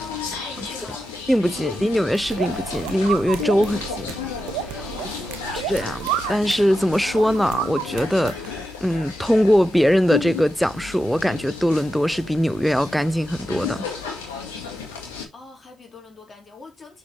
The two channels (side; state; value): both; normal; correlation 0.89